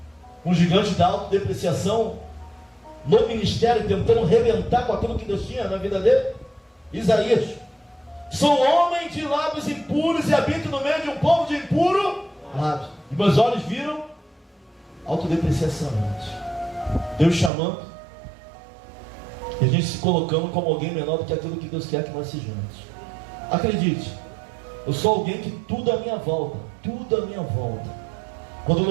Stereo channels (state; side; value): drops out; left; at 17.5 s